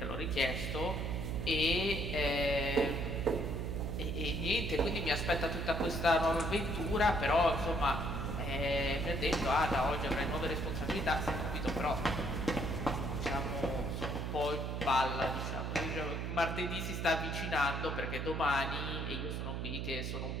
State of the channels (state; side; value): noise; right; hum, 3 dB below the sound